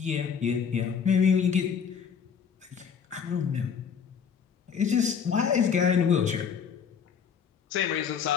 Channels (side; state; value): right; quieter; 6.9 dB